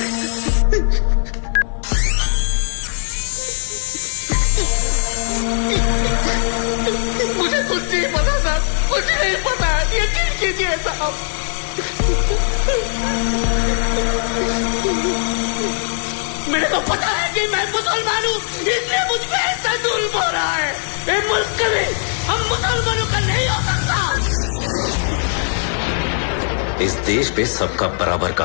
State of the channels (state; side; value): silent; right; 56 dB below the other